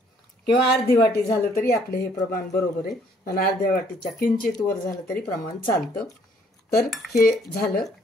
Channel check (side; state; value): both; normal; correlation 0.64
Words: किंवा अर्धी वाटी झालं तरी आपलं हे प्रमाण बरोबर आहे। आणि अर्ध्या वाटीच्या किंचित वर झालं तरी प्रमाण चालतं। तर हे झालं,